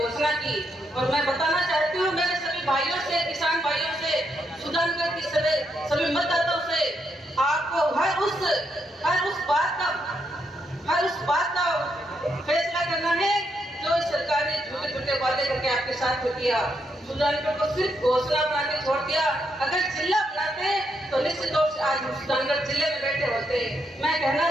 की। और मैं बताना चाहती हूँ मेरे सभी भाइयों से, किसान भाइयों से, सुजानगढ़ की सभी मतदाताओं से, आपको हर उस बात का फैसला करना है जो इस सरकार ने छोटे छोटे वादे करके आपके साथ में किया। सुजानगढ़ को सिर्फ घोषणा बना के छोड़ दिया। अगर जिला बनाते तो निश्चित तौर से आज हम सुजानगढ़ जिले में बैठे होते। मैं कहना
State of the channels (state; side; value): normal; both; correlation 0.79